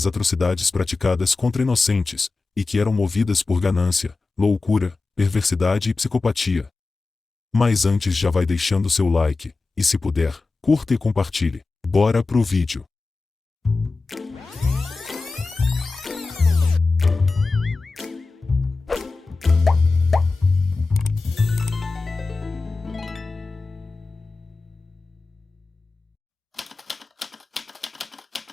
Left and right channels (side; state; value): right; quieter; 3.8 dB